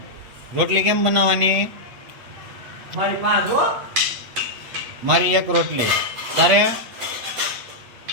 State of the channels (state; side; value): late; left; 8.5 ms